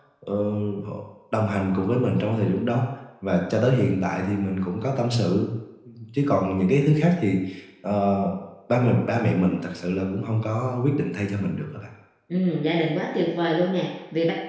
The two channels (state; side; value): identical; both; correlation 1.00